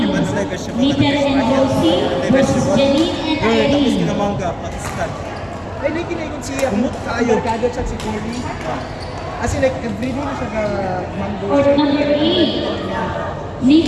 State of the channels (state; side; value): identical; both; correlation 1.00